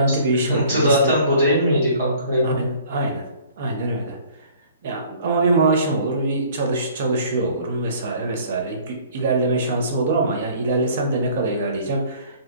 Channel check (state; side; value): inverted; both; correlation -0.52